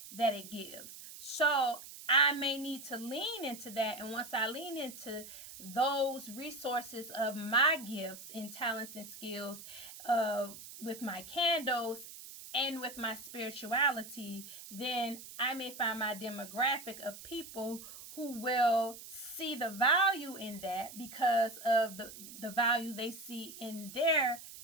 that it gives. So I may need to lean into that. And once I lean into those resources of my gifts and talents and skills with my candles and with my spirituality, then I may find my demographic of people who will see the value in that because of the value they see in their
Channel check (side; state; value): right; noise; hiss, 14 dB below the sound